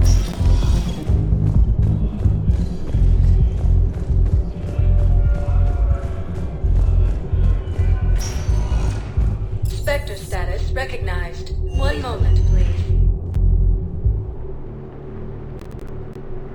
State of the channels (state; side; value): identical; both; correlation 1.00